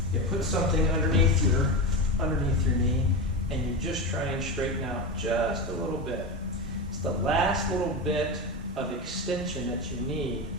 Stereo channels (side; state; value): both; normal; correlation 0.20